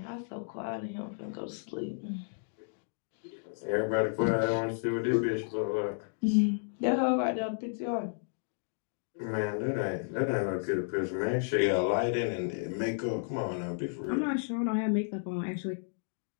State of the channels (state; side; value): silent; right; digital silence